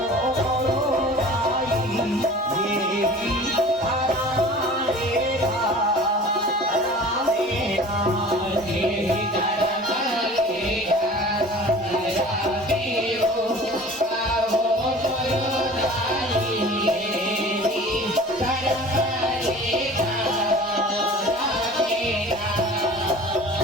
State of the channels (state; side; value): normal; both; correlation 0.43